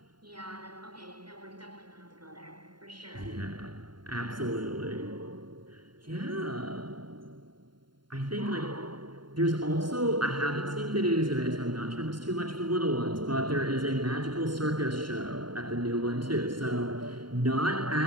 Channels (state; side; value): late; left; 0.72 ms